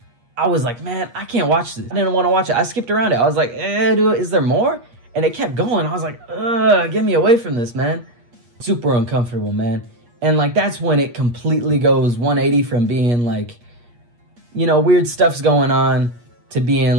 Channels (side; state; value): left; late; 8.4 ms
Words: I was like, man, I can't watch this. I didn't want to watch it. I skipped around it. I was like, dude, is there more? And it kept going. I was like, get me away from this, man. Super uncomfortable, man. And, like, that's when it completely goes 180 from being, like, you know, weird stuff's going on to being,